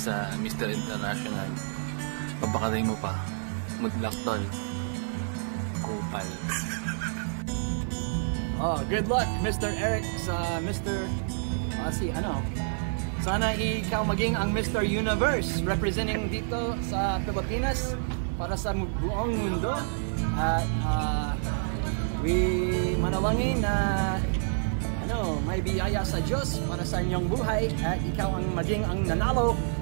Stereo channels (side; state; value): left; silent; 59 dB below the other